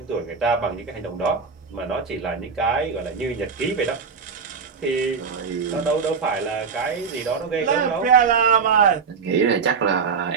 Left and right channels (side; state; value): left; quieter; 5.6 dB